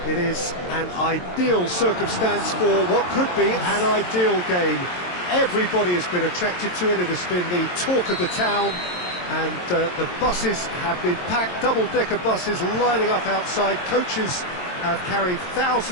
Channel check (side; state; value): right; late; 22 ms